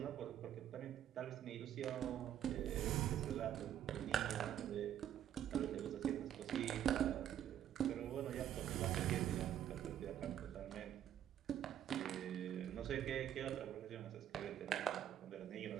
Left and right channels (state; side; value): quieter; left; 10.6 dB